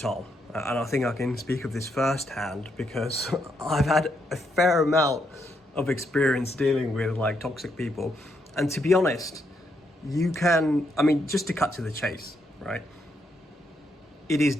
and I think I can speak of this firsthand because I've had a fair amount of experience dealing with like toxic people. And to be honest, just to cut to the chase, right? It is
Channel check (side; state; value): both; normal; correlation 0.78